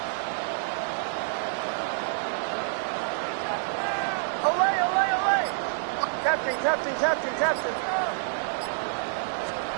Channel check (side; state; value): left; silent; digital silence